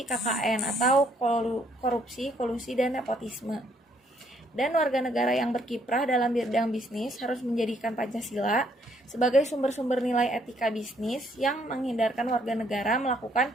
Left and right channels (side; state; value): both; normal; correlation 0.68